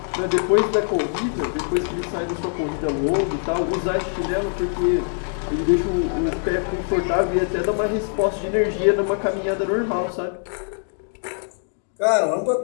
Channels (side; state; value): right; silent; 62 dB below the other